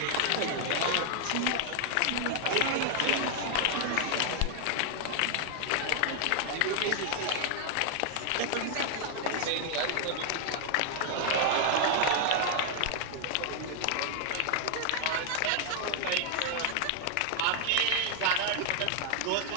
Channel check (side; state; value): both; different; correlation 0.00